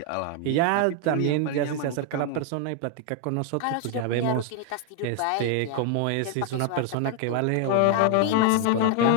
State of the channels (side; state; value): both; different; correlation 0.00